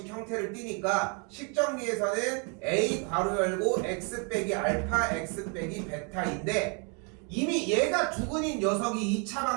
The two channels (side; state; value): left; quieter; 37.0 dB